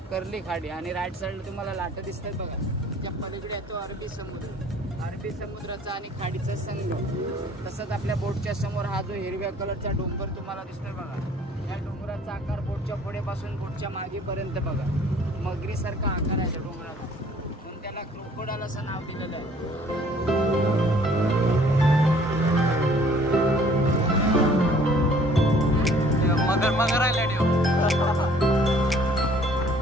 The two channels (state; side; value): normal; both; correlation 0.56